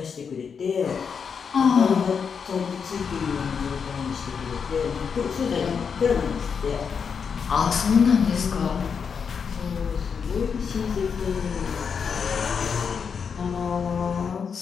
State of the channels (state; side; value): quieter; right; 6.3 dB